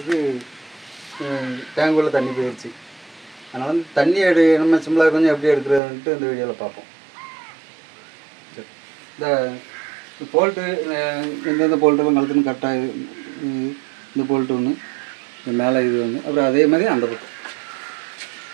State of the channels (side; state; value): left; drops out; at 5.8 s